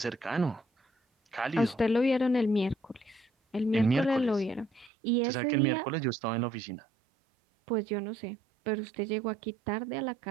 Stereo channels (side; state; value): left; drops out; at 4.9 s